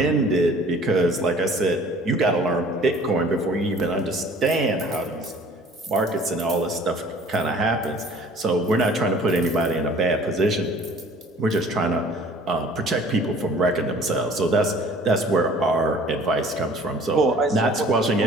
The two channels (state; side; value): normal; both; correlation 0.51